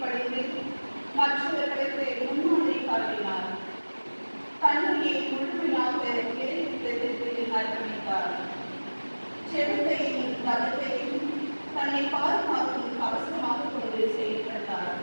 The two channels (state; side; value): inverted; both; correlation -1.00